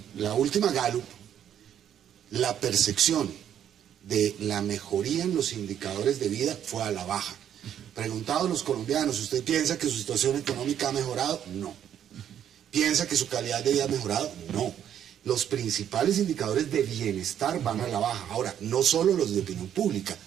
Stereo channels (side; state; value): left; quieter; 9.8 dB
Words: la última Gallup, la percepción de la mejoría en los indicadores de vida fue a la baja. Preguntados los colombianos, ¿usted piensa que su situación económica ha mejorado? No. ¿Piensa que su calidad de vida ha mejorado? No. Los principales indicadores de bienestar van a la baja. Ahora, no solo los de opinión pública,